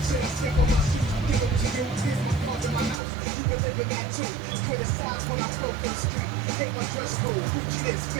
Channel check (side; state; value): left; drops out; at 3.0 s